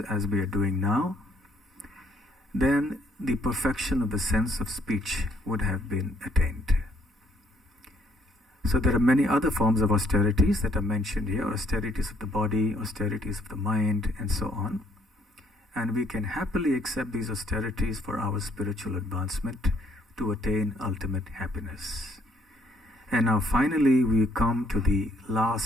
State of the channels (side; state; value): both; normal; correlation 0.66